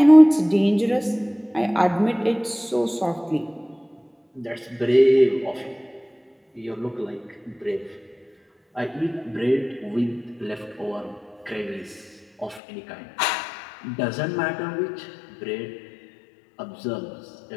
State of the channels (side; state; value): right; drops out; at 12.6 s